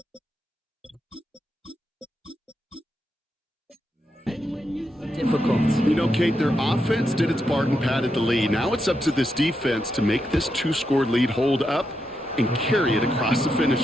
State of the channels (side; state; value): both; normal; correlation 0.84